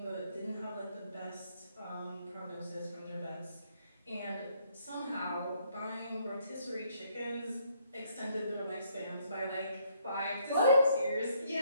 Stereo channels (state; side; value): inverted; both; correlation -0.69